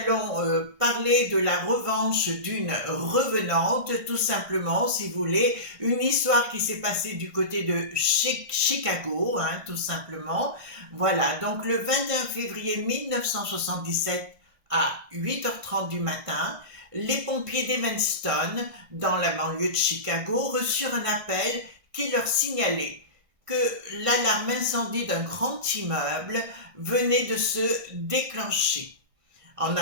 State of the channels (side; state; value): left; late; 1.6 ms